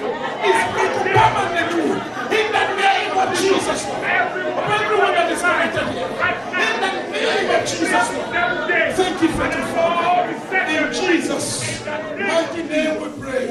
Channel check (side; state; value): both; identical; correlation 1.00